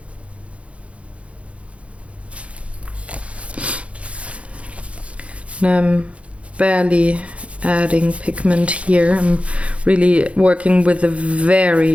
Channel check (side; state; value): left; late; 0.062 ms